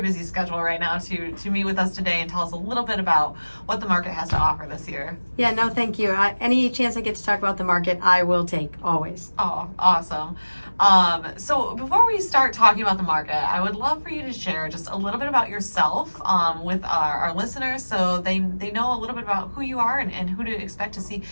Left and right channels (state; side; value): inverted; both; correlation -1.00